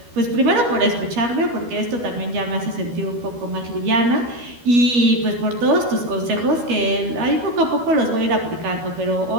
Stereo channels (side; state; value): left; late; 12 ms